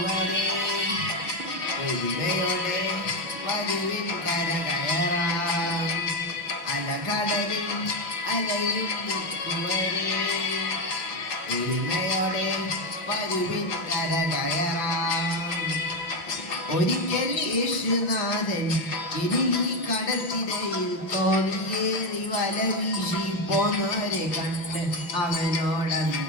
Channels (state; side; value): late; right; 5.9 ms